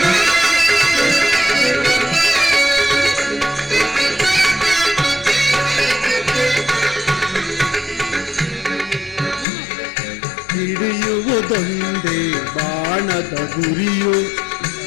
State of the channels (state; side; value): drops out; right; at 9.5 s